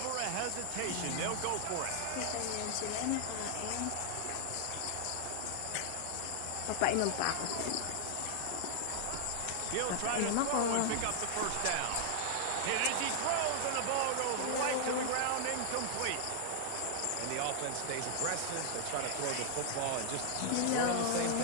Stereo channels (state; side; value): different; both; correlation 0.00